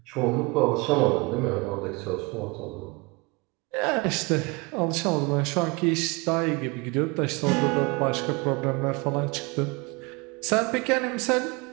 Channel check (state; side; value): quieter; left; 27.2 dB